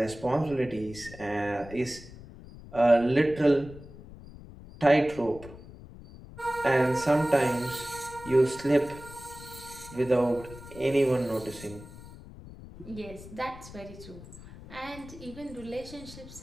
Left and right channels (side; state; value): left; noise; rumble, 16 dB below the sound